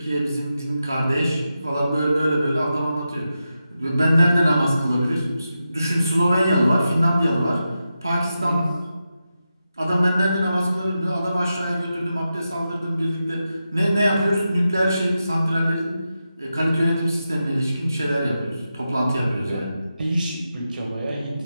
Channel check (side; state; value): both; inverted; correlation -0.89